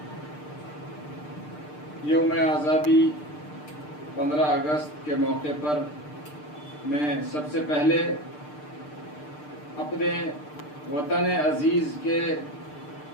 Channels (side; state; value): right; late; 6.7 ms